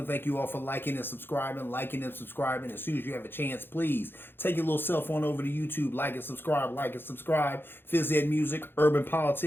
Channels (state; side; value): late; right; 0.10 ms